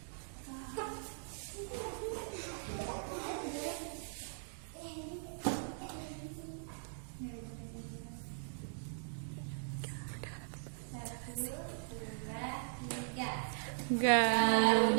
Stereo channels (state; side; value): silent; left; digital silence